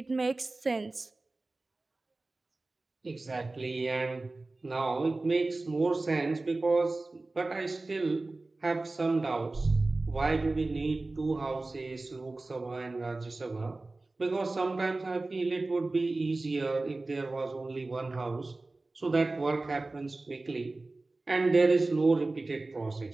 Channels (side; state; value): left; quieter; 3.2 dB